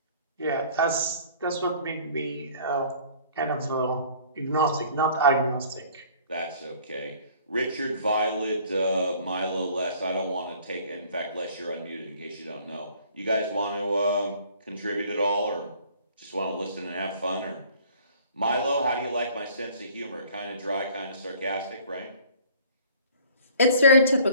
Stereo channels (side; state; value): both; inverted; correlation -0.52